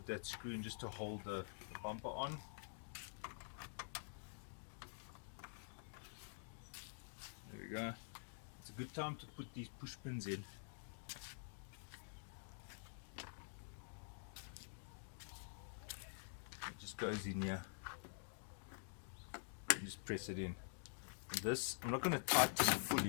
that screw in just to hold the bumper on. There we go. It's a good time to put these push pins in. It just goes in here. You just press it in. And this, I'm not going to tighten it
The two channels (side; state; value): right; silent; digital silence